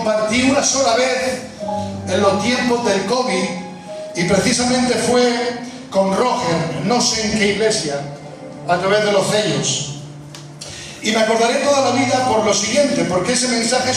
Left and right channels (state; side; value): identical; both; correlation 1.00